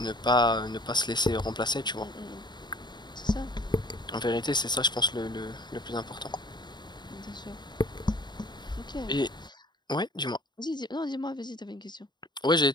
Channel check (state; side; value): late; right; 0.21 ms